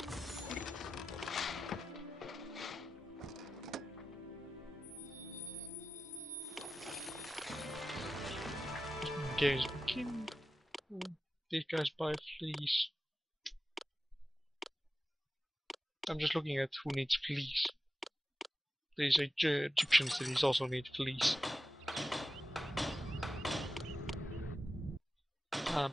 Games begin. These guys buy fleece. I'm just looking at who needs fleece. These Egyptian cities also need fleece. I'm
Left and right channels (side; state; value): both; normal; correlation 0.92